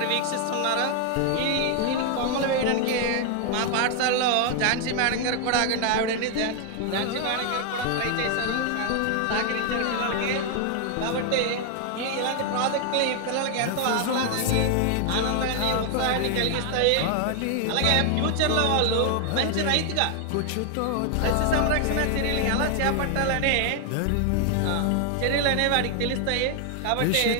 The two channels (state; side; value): different; both; correlation 0.00